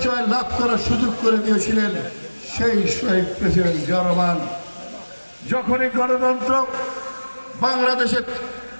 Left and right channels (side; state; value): both; inverted; correlation -1.00